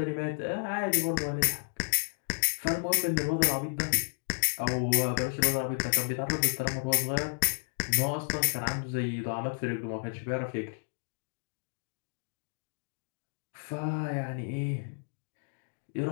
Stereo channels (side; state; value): right; silent; digital silence